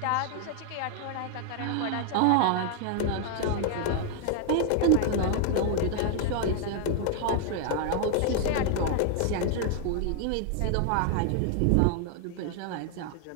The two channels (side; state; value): both; different; correlation 0.00